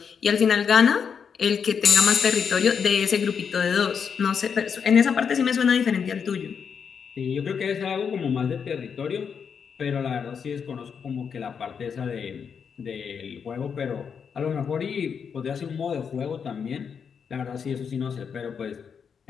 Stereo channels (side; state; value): right; quieter; 6.7 dB